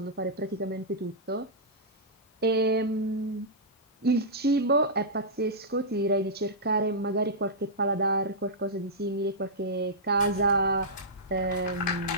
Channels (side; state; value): both; normal; correlation -0.13